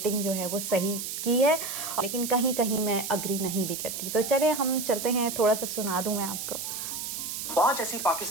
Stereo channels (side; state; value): right; noise; hiss, 5 dB below the sound